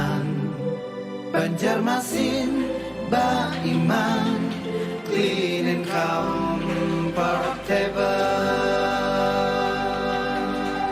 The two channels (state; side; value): identical; both; correlation 1.00